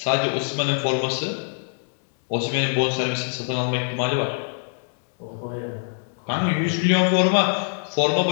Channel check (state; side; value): silent; right; digital silence